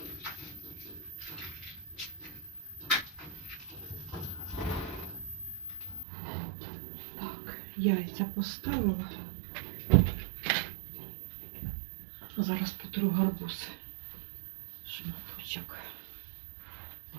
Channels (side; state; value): left; drops out; at 6.1 s